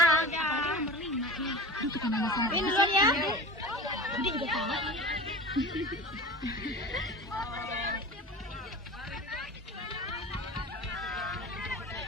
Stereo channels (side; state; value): both; normal; correlation 0.33